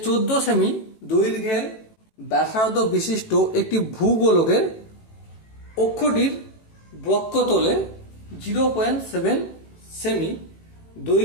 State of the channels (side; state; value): right; late; 18 ms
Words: 14 সেমি দৈর্ঘ্যের ব্যাসার্ধ বিশিষ্ট একটি ভূগোলকের অক্ষটির বক্ষতলে 0.7 সেমি